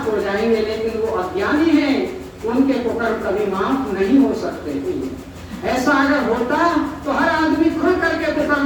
हो जाएंगे, लेकिन वो अज्ञानी हैं, उनके कुकर्म कभी माफ नहीं हो सकते। ऐसा अगर होता तो हर आदमी खुल करके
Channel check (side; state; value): both; identical; correlation 1.00